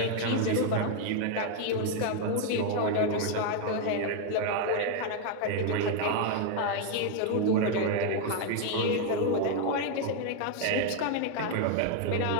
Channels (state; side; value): different; both; correlation 0.00